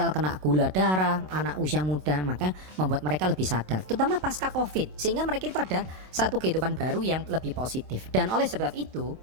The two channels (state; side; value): late; left; 27 ms